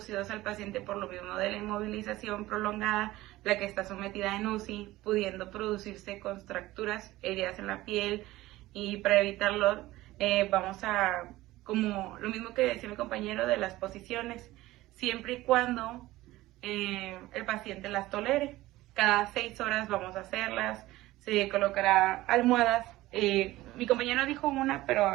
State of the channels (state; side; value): quieter; left; 17.4 dB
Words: al paciente por lo mismo de la inmovilización prolongada, la que está sometida en UCI, pudiendo producirse contracturas, heridas en la piel, y para evitarlo vamos a, como lo mismo que decía mi compañero de las posiciones, siempre y cuando el paciente las tolere. Cada 6 horas vamos a hacerlas, se colocará almohadas. Mi compañero dijo una,